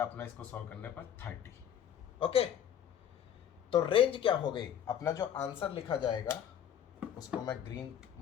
अपना इसको सॉल्व करने पर 30। ओके, तो रेंज क्या हो गई, अपना जो आंसर लिखा जाएगा उसको मैं ग्रीन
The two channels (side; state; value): right; quieter; 9.4 dB